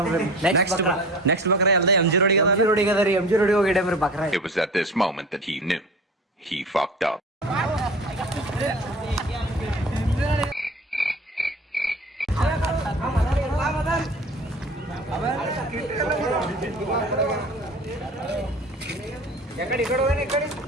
ನೆಕ್ಸ್ಟ್ ಬಕ್ರ ಎಲ್ಲ ಎಂ ಜಿ ರೋಡಿಗೆ ರೋಡಿಗೆ ಅದ ರೀ ಎಂ ಜಿ ರೋಡಿಗೆ ಹೋಗಿಡಮ್ರಿ ಬಕ್ರಾ It was at this moment that he knew. He fucked up.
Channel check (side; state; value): both; normal; correlation 0.39